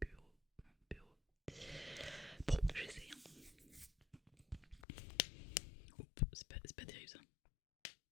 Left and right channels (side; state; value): right; drops out; at 4.9 s